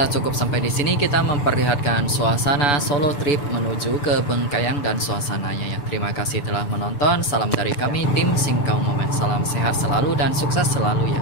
cukup sampai di sini kita memperlihatkan suasana solo trip menuju ke Bengkayang dan suasananya ya. Terima kasih telah menonton. Salam dari kami tim Singkau Moment. Salam sehat selalu dan sukses selalu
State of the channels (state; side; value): late; right; 6.9 ms